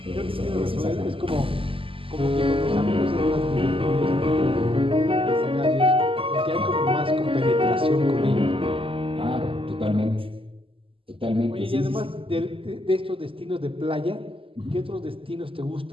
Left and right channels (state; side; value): late; left; 0.26 ms